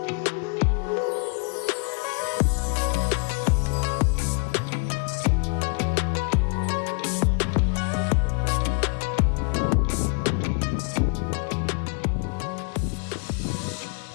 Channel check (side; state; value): right; quieter; 35.8 dB